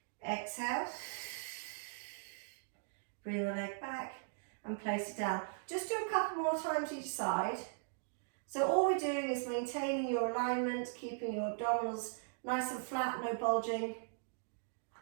Exhale, bring the leg back and place it down. Just do a couple more times each side. So all we're doing is maintaining your alignment, keeping your abdominals nice and flat, no bulging.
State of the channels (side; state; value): left; silent; digital silence